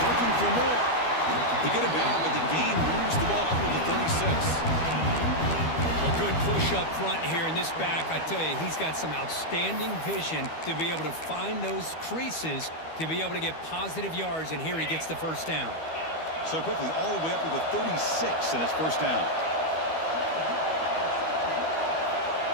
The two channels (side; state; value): right; late; 12 ms